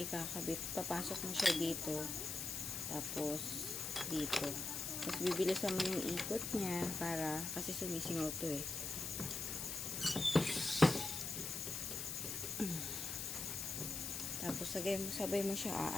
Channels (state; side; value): noise; left; hiss, 3 dB below the sound